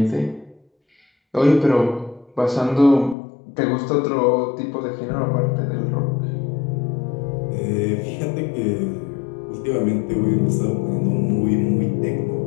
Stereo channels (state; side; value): drops out; right; at 3.2 s